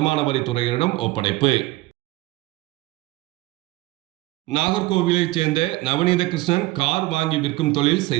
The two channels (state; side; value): quieter; left; 19.8 dB